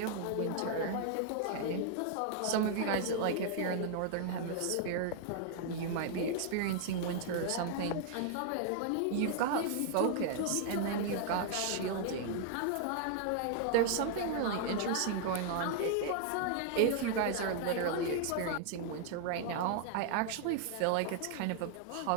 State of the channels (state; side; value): different; both; correlation -0.01